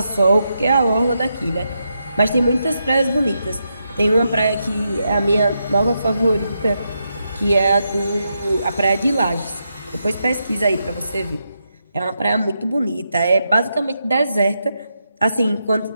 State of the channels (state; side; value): inverted; both; correlation -0.84